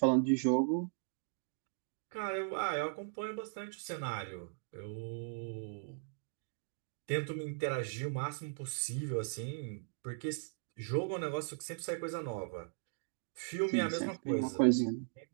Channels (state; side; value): silent; left; digital silence